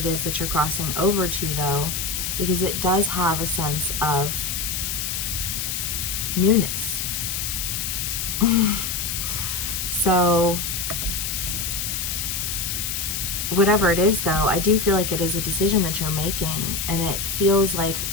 is that you're crossing over to though, because it does have a sense of newness. So whatever it is though, I do feel like it is a decision that you're making, and it feels like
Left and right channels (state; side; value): noise; left; hiss, 2 dB below the sound